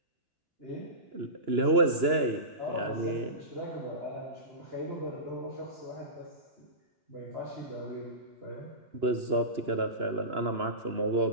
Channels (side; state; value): left; late; 2.9 ms